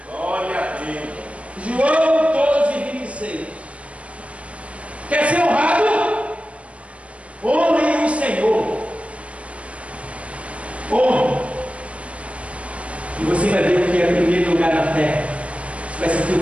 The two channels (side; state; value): left; late; 0.063 ms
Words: Glória a Deus. João 12:26. Quer ser honrado? Honre o Senhor. Honre. E você vai ver o que é o primeiro lugar na terra. Você vai sentir